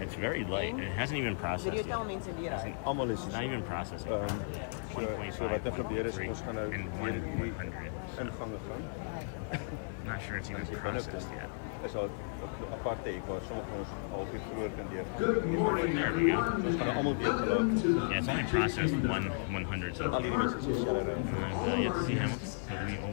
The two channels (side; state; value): right; silent; digital silence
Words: very light. It hasn't even processed yet. It's not even processing properly. 1.5, 1.3, and 100. So. Not sure it's even processed yet. Good morning, there we go. Yeah, it's only processed 100 so far. And yet to see Hamilton, but we